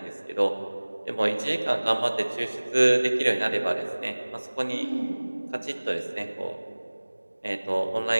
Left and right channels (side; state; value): both; inverted; correlation -1.00